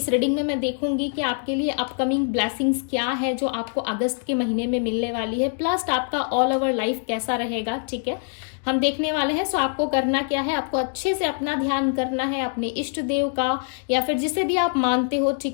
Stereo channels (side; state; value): right; silent; 58 dB below the other